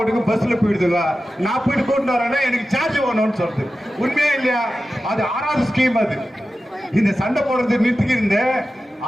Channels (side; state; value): both; normal; correlation 0.93